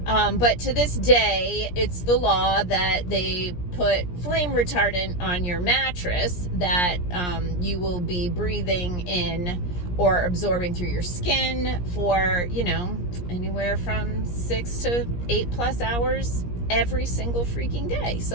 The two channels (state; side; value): late; right; 17 ms